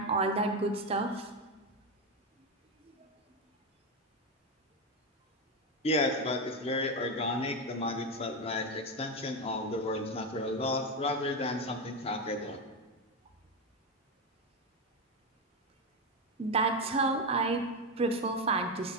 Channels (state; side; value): normal; both; correlation 0.11